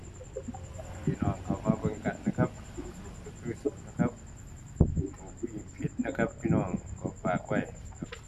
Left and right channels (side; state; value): both; identical; correlation 1.00